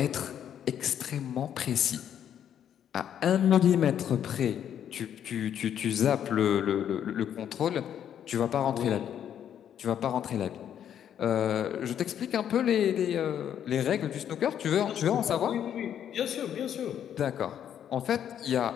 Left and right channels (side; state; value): right; quieter; 9.6 dB